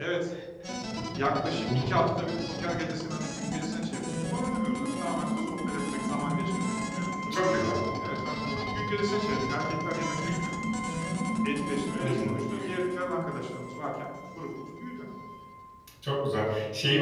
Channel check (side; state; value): both; identical; correlation 1.00